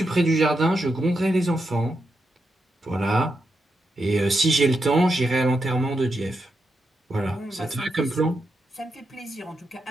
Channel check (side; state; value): both; normal; correlation 0.85